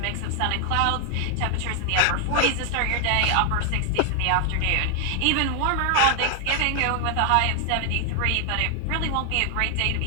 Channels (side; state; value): both; different; correlation 0.00